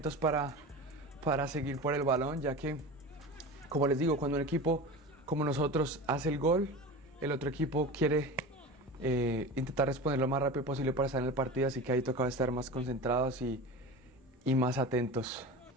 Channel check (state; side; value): normal; both; correlation 0.31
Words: para seguir por el balón, ya que, como les digo, cuando un equipo como nosotros hace el gol, el otro equipo quiere intentar responder lo más rápido posible para estar en el partido, así que ahí tocaba estar más concentrados y más atentos.